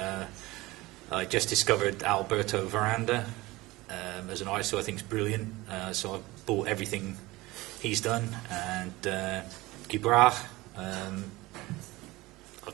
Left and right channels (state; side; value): quieter; left; 20.3 dB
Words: I just discovered Alberto Veranda as an artist who I think is brilliant. So I've bought everything he's done, and Guibra. I've